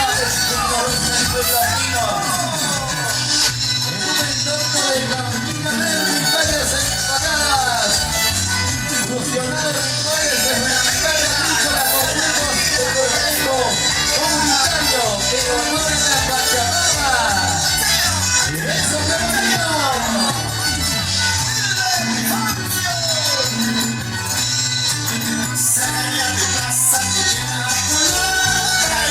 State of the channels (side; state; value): both; identical; correlation 1.00